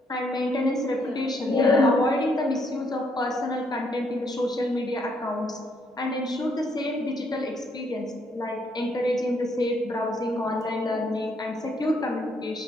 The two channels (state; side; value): normal; both; correlation 0.71